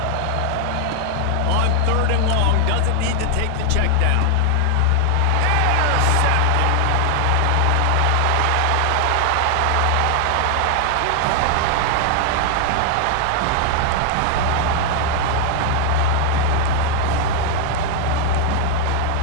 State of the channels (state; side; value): different; both; correlation 0.00